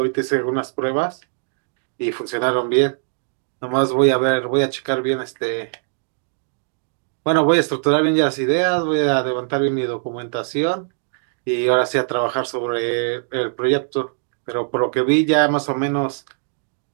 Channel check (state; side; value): silent; left; digital silence